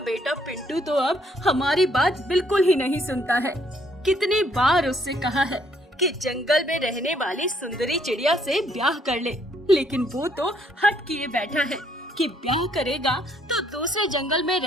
बेटा पिंटू तो अब हमारी बात बिल्कुल ही नहीं सुनता है। कितनी बार उससे कहा है कि जंगल में रहने वाली सुंदरी चिड़िया से ब्याह कर ले, लेकिन वो तो हट किए बैठा है कि ब्याह करेगा तो दूसरे जंगल में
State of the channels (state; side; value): normal; both; correlation 0.68